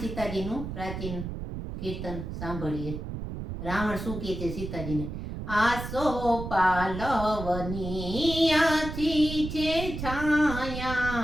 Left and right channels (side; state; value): right; noise; rumble, 7 dB below the sound